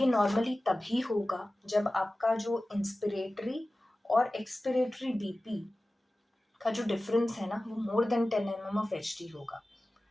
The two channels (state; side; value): normal; both; correlation 0.96